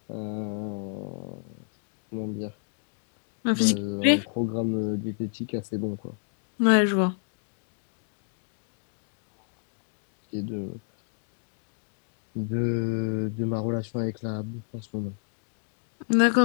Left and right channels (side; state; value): right; silent; digital silence